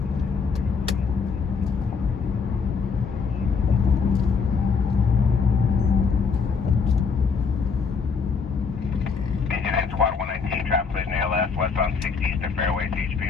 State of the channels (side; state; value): right; quieter; 5.3 dB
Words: Squad 119, traffic collision ALS, westbound 60 Eastern Fairway,